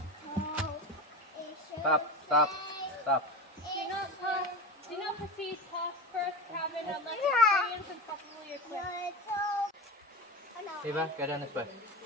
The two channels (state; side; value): normal; both; correlation 0.23